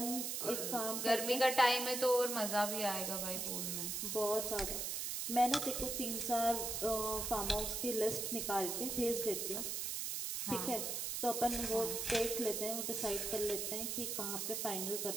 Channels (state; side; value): noise; right; hiss, 2 dB below the sound